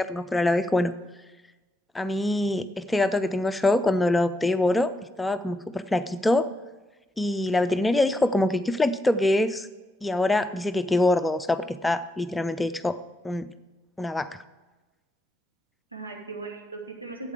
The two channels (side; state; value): both; normal; correlation 0.84